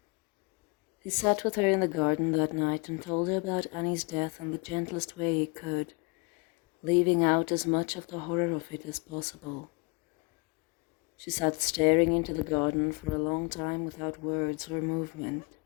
He sat with her in the garden that night and told her about Annie's death in the gentlest way he could, leaving out as much of the horror of it as possible. She sat staring into the garden for a long time without words or movement.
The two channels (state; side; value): quieter; right; 29.4 dB